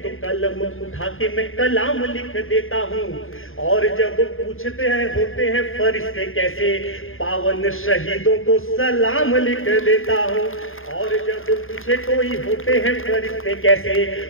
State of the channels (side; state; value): right; late; 0.59 ms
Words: तो कलम उठा के मैं कलाम लिख देता हूँ। और जब पूछते हैं होते हैं फरिश्ते कैसे, पावन शहीदों को सलाम लिख देता हूँ। और जब पूछे कोई होते हैं फरिश्ते कैसे,